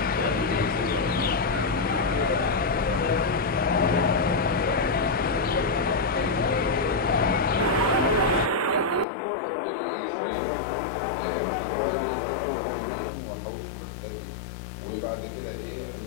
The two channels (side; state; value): right; drops out; at 9.1 s